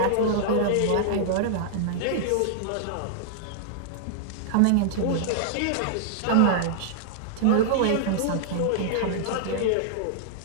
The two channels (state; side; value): different; both; correlation -0.01